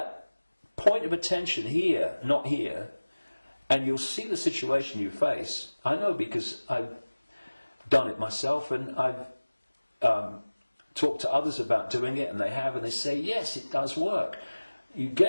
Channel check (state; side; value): inverted; both; correlation -1.00